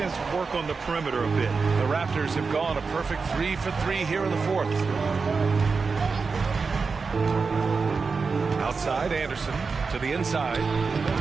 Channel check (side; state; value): left; quieter; 4.8 dB